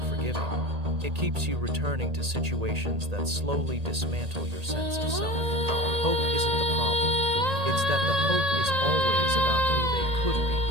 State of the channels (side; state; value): left; late; 1.8 ms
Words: forgiving. It keeps you returning to situations that slowly dismantle your sense of self. Hope isn't the problem. It's that the hope is always about who they could be,